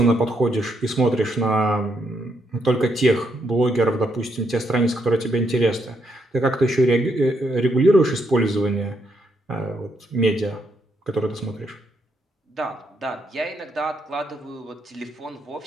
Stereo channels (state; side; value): normal; both; correlation 0.77